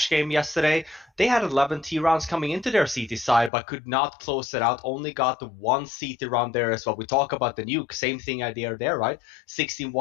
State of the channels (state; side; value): drops out; right; at 3.5 s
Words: game yesterday. They had 11 T rounds coming into their CT side, but could not close it out. Only got the one CT round there as well. We talk about the Nuke, same thing idea there, right? 16-1